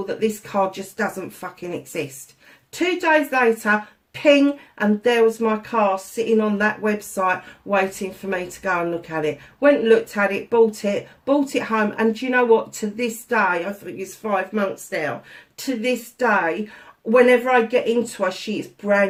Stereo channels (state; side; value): identical; both; correlation 1.00